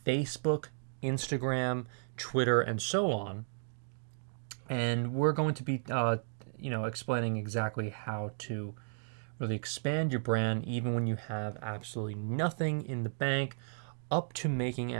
Facebook, Instagram, Twitter, and so on. And we're going to be explaining exactly how to really expand your brand even when you have absolutely nothing in the bank, up to making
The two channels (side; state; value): left; silent; digital silence